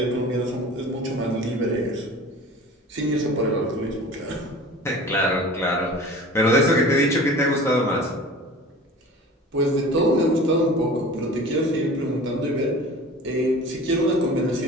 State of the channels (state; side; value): normal; both; correlation 0.40